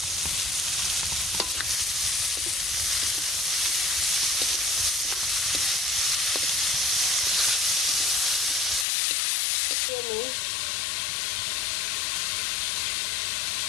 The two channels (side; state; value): right; drops out; at 8.8 s